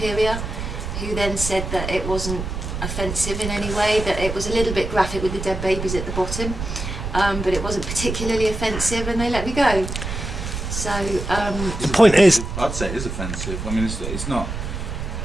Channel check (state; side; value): noise; right; rumble, 5 dB below the sound